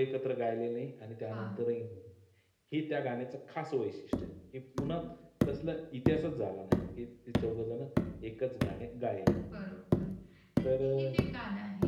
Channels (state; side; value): identical; both; correlation 1.00